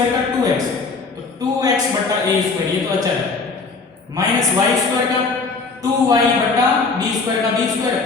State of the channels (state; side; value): quieter; right; 4.2 dB